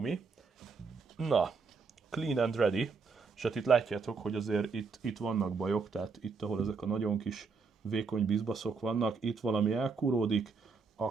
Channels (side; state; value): left; quieter; 4.9 dB